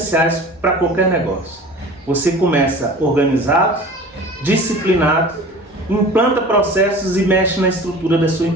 para qualquer negócio. Você começa organizado, disciplinado, implanta processos e mexe na estrutura da sua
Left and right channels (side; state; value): both; normal; correlation 0.41